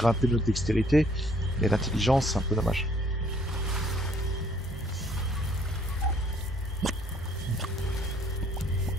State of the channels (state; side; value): normal; both; correlation 0.63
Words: notre dextérité. Mais l'intelligence, c'est un peu dommage.